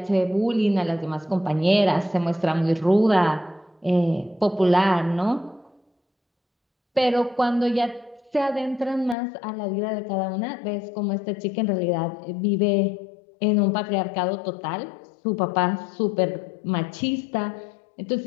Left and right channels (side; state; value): right; drops out; at 9.2 s